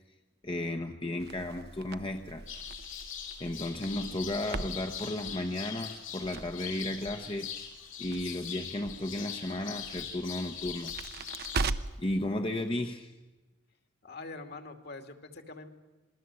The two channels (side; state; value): both; normal; correlation 0.60